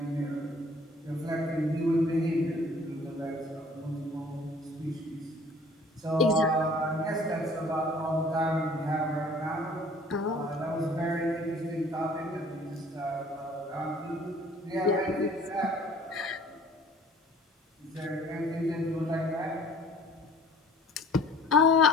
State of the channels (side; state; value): both; normal; correlation 0.51